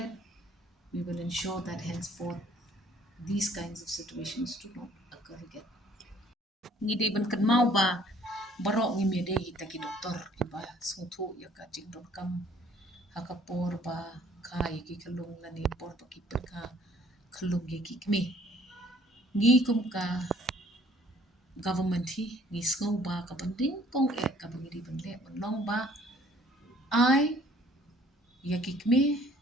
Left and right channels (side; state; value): both; normal; correlation 0.58